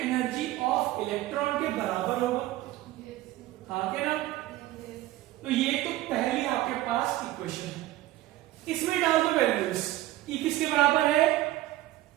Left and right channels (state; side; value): quieter; left; 15.9 dB